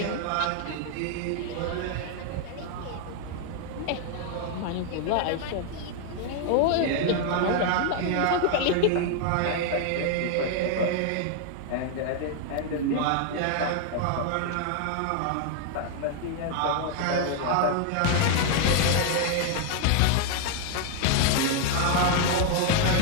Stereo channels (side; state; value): both; different; correlation 0.00